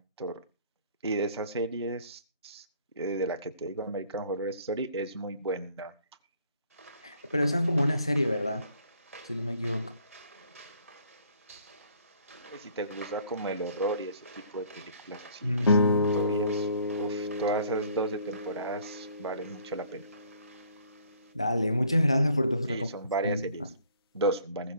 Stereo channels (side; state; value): both; inverted; correlation -0.58